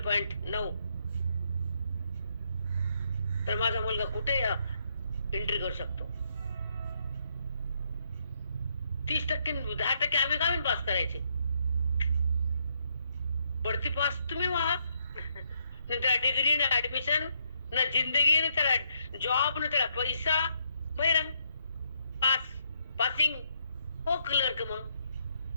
तर माझा मुलगा कुठे एंट्री करू शकतो. 30% 10% आम्ही गावीन पास करायचे. बढती पास तुम्ही व्हा. त्याला डिग्री ना ऍडमिशन ना जिंदगी ना त्याला जॉब ना त्याला पैसा. बहिरंग पास पासिंग हो क्लर्क मग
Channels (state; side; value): inverted; both; correlation -0.74